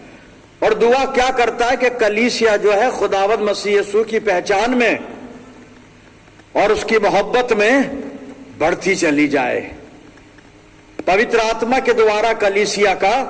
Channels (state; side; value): identical; both; correlation 1.00